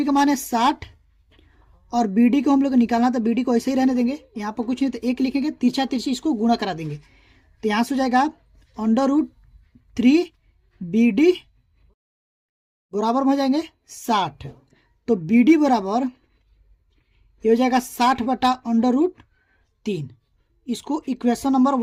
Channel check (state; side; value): identical; both; correlation 1.00